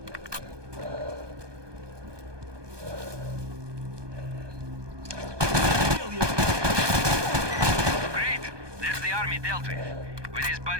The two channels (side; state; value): left; late; 1.2 ms